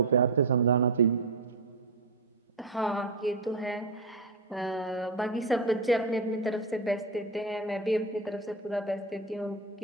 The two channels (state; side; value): quieter; left; 3.3 dB